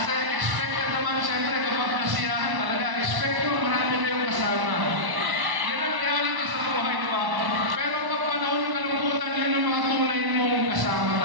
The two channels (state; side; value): late; left; 1.1 ms